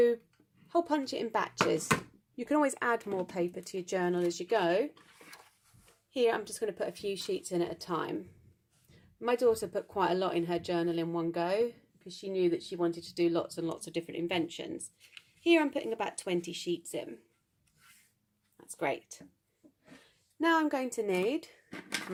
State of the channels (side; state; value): both; identical; correlation 1.00